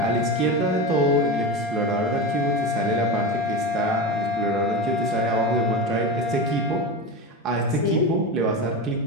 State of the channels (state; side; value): normal; both; correlation 0.22